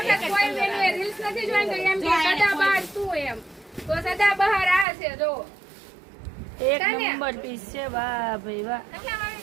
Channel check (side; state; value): left; drops out; at 4.9 s